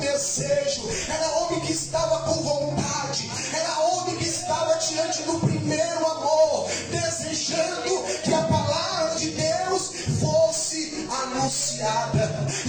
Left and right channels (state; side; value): identical; both; correlation 1.00